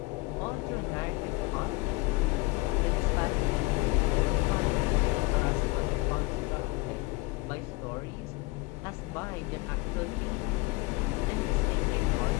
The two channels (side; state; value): right; quieter; 23.2 dB